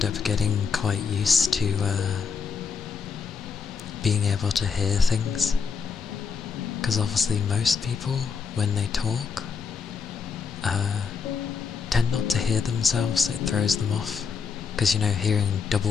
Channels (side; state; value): right; quieter; 5.7 dB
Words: up getting quite used to being able to hear things, because obviously most people, when they talk, tend not to hear themselves. It throws them off, because, you know, hearing